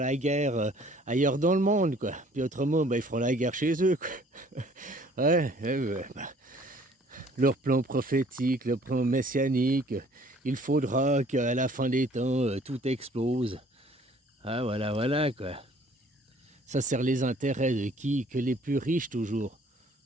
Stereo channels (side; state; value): both; normal; correlation 0.56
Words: guerre ailleurs dans le monde, quoi. Puis autrement, bah, ils feront la guerre chez eux, quoi. Ouais, ouais, bah, leur plan prophétique, leur plan messianique, il faudra qu'à la fin des temps, tout explose. Ah, voilà, voilà, quoi. Ça sert les intérêts de qui? Que les plus riches, toujours.